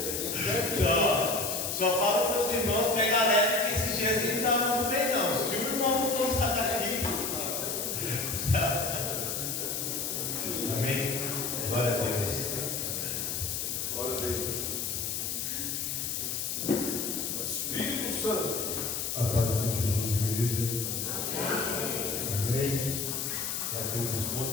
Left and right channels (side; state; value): left; noise; hiss, 2 dB below the sound